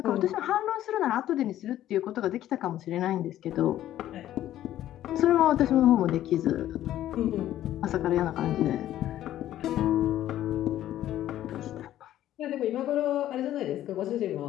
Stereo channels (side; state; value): right; quieter; 12.8 dB